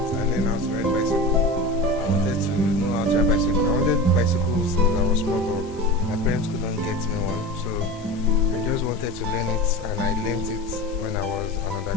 I learned how to ride bicycle. I wanted to know how to ride bicycle. I wanted bicycles since I was small, but my parents couldn't get me one, so I just wanted to learn it, and I learned it when I was an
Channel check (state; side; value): normal; both; correlation 0.29